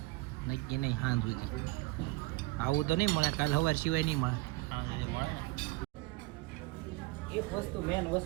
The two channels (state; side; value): quieter; left; 21.3 dB